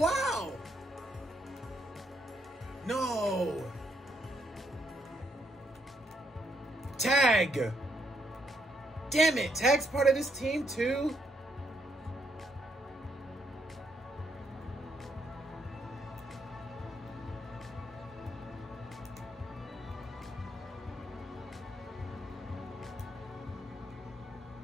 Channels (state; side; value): normal; both; correlation 0.75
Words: No. Tag. Damn it. Tag's part of this team, too?